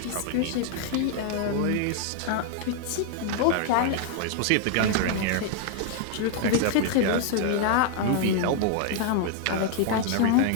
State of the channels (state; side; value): different; both; correlation 0.00